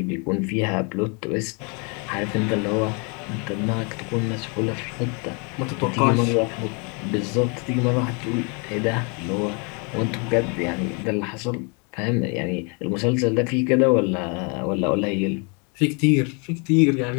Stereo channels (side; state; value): right; quieter; 34.1 dB